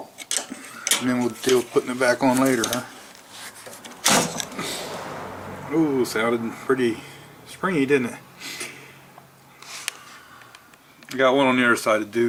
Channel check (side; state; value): both; identical; correlation 1.00